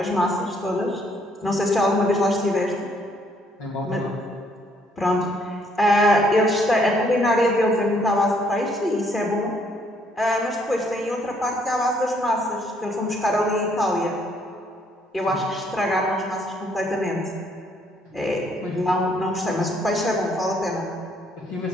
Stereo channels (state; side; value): normal; both; correlation 0.67